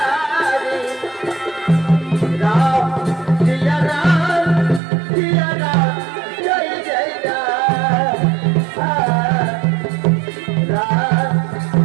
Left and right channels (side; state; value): left; drops out; at 4.8 s